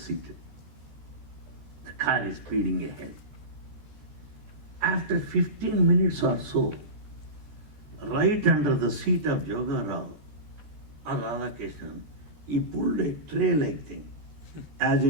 The car is speeding ahead. After 15 minutes or so, right under the seat of Joga Rao or Radha Krishnan, he pulled a tray-like thing. As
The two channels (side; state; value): left; late; 14 ms